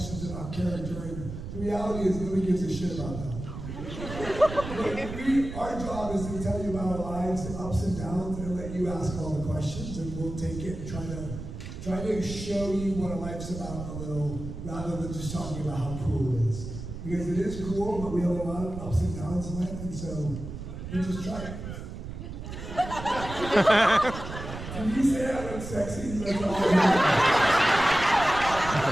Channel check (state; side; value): noise; right; rumble, 9 dB below the sound